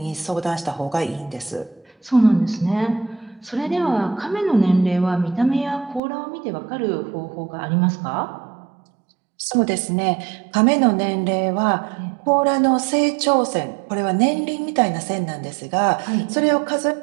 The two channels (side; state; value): left; drops out; at 6.0 s